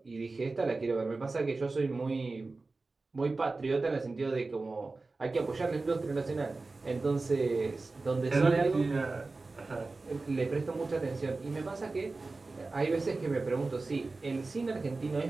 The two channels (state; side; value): quieter; left; 3.6 dB